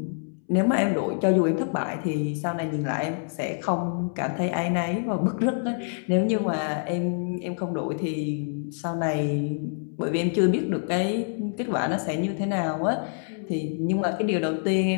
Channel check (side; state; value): right; silent; 61 dB below the other